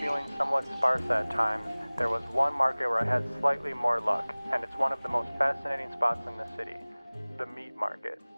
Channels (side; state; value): both; inverted; correlation -1.00